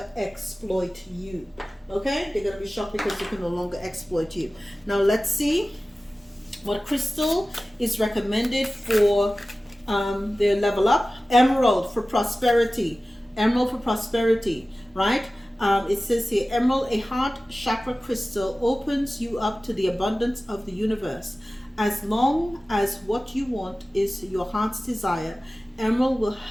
exploit you. Okay? They're going to be shocked because they can no longer exploit you. Now let's see what crystal is recommended for their level up. Emerald for prosperity. Emerald for prosperity, right? It says here, emerald, a heart chakra crystal, opens you up to the abundance of the universe. As long as what you want is your heart's desire, emerald will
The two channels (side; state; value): both; normal; correlation 0.96